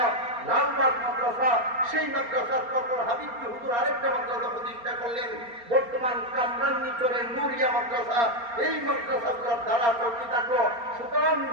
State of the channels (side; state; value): left; late; 4.3 ms